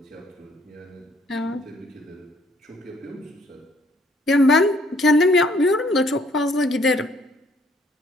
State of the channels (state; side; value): normal; both; correlation 0.64